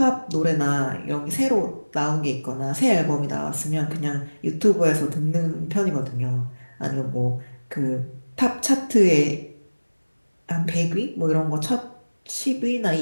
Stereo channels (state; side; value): inverted; both; correlation -1.00